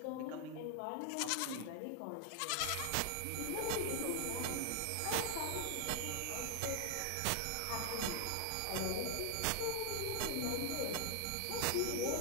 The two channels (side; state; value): both; different; correlation 0.00